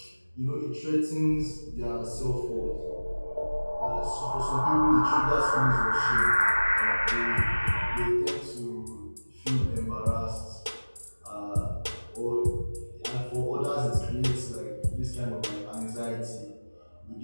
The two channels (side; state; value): both; inverted; correlation -1.00